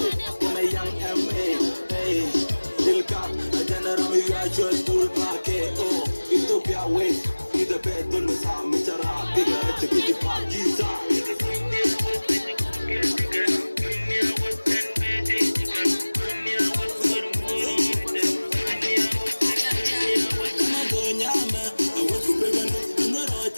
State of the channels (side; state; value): both; inverted; correlation -1.00